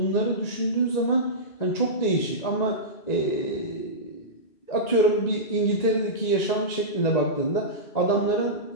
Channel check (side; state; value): right; late; 1.9 ms